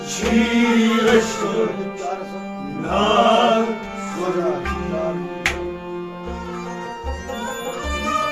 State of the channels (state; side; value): identical; both; correlation 1.00